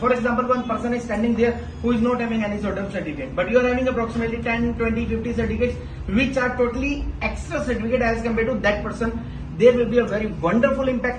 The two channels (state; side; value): identical; both; correlation 1.00